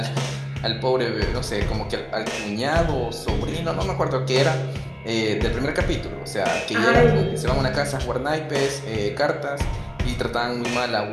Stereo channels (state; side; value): identical; both; correlation 1.00